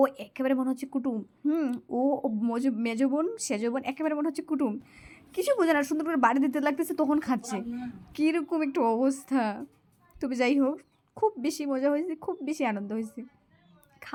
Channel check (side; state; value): both; identical; correlation 1.00